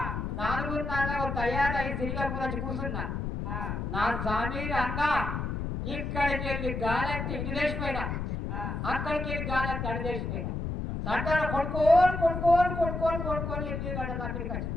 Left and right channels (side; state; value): left; noise; rumble, 3 dB below the sound